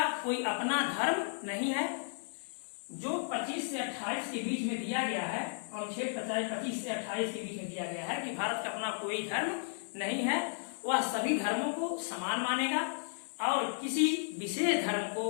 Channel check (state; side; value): silent; right; 55 dB below the other